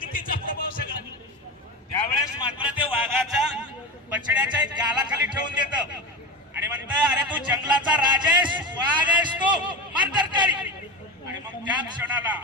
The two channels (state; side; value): normal; both; correlation 0.23